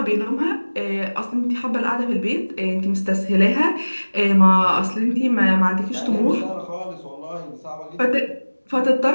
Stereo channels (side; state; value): both; inverted; correlation -1.00